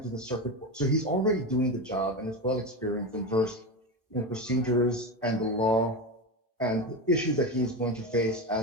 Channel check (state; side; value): normal; both; correlation 0.18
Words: to the circuit court. So he's already doing the job and is well experienced and versed in the procedures and the law and the issues that he's going to face